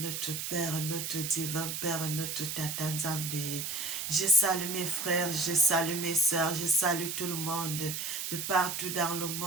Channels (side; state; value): right; noise; hiss, 4 dB below the sound